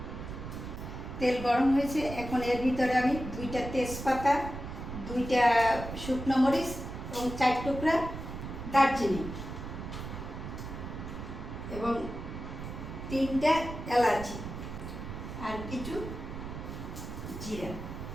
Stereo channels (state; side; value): noise; right; rumble, 8 dB below the sound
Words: তেল গরম হয়েছে। এখন এর ভিতরে আমি 2টা তেজপাতা, 2টা শুকনো মরিচ এবং 4 টুকরা দারচিনি এবং 3টা এলাচি আর কিছু জিরা